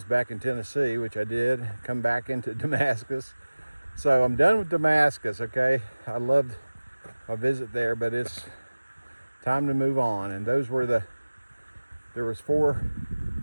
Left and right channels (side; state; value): both; inverted; correlation -1.00